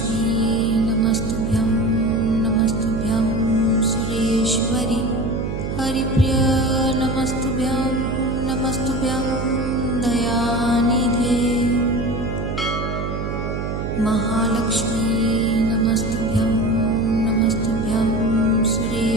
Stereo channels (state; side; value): noise; right; hum, 3 dB below the sound